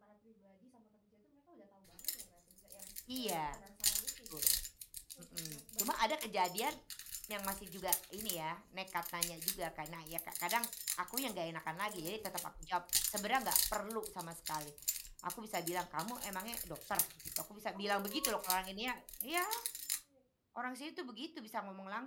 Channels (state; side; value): identical; both; correlation 1.00